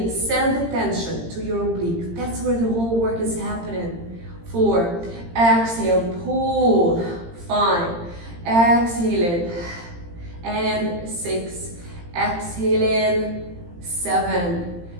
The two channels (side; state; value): left; late; 18 ms